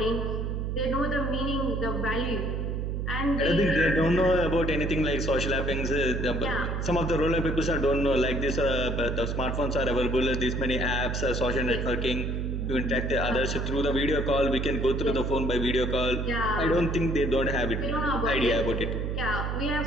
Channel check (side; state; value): right; noise; hum, 1 dB below the sound